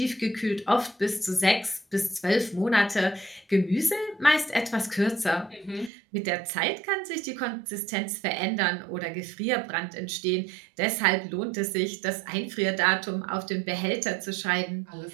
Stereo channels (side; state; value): left; drops out; at 5.9 s